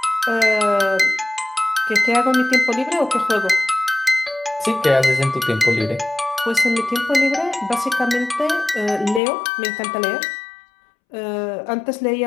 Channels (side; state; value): right; drops out; at 9.2 s